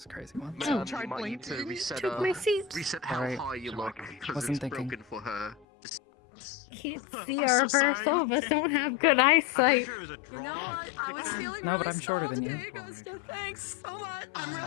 crazy once. Oh. You might need to reset, Took my seat. reset how Alright. high you look because Wasn't it's thinking. broken for her. Can't see Arbor. Some of us don't have good eyesight. You know what? I was feeling No, but really I'm shorter small than you. today, Gusta. Thanks so much. I'm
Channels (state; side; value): drops out; right; at 5.7 s